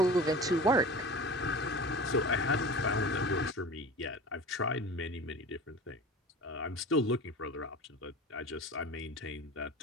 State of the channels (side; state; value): both; normal; correlation 0.35